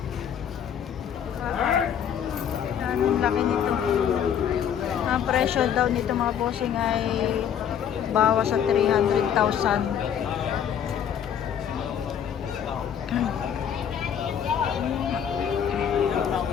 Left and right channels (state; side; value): quieter; right; 8.7 dB